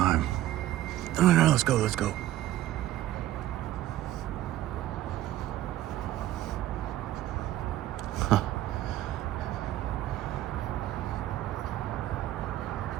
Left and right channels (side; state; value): left; quieter; 14.0 dB